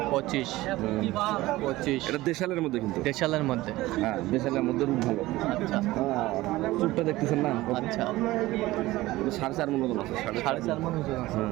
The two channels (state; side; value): quieter; left; 18.0 dB